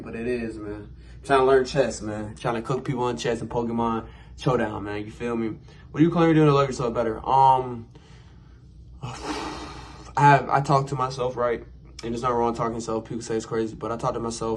but it is, man. I'm trying to learn chess, man. Trying to cook people in chess and Pokemon Showdown, man. You feel me? What are you currently doing to love yourself better? I talk to myself, right? And it's not wrong talking to yourself. People say it's crazy, but I talk to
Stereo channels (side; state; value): both; identical; correlation 1.00